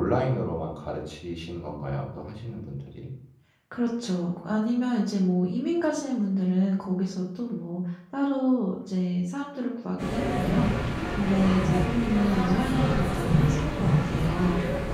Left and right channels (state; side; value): identical; both; correlation 1.00